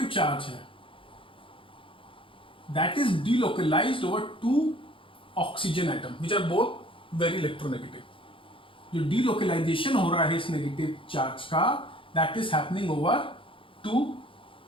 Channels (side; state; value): right; late; 0.25 ms